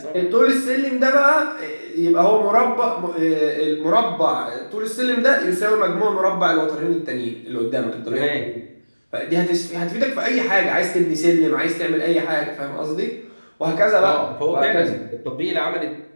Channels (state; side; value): inverted; both; correlation -1.00